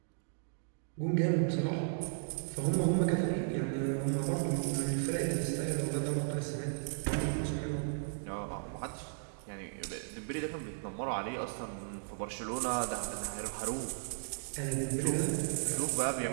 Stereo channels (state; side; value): silent; left; digital silence